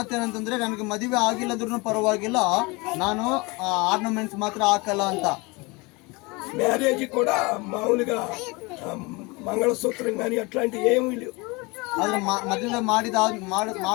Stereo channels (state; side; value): quieter; right; 26.0 dB